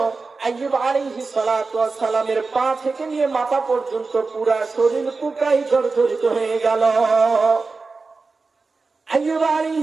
আইয়ুব আলাইহিস সালাতু ওয়াস সালামের পা থেকে নিয়ে মাথা পর্যন্ত পুরো শরীর পোকায় জর্জরিত হয়ে গেল। আইয়ুব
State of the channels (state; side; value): quieter; left; 4.1 dB